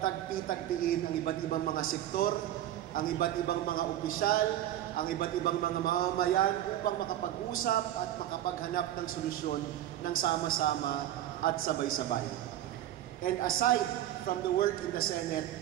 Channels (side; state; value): left; quieter; 12.5 dB